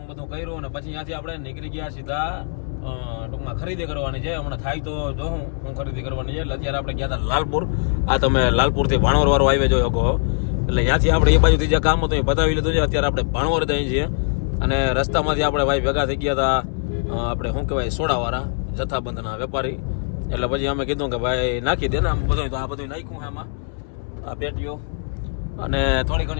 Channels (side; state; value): right; silent; 64 dB below the other